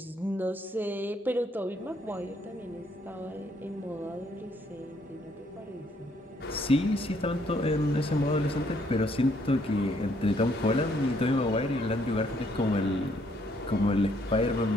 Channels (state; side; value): normal; both; correlation 0.69